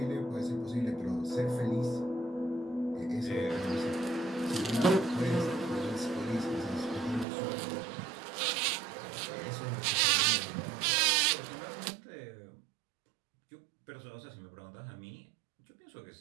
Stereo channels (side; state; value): left; drops out; at 7.2 s